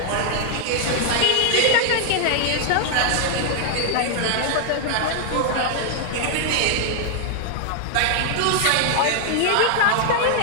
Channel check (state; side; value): different; both; correlation 0.00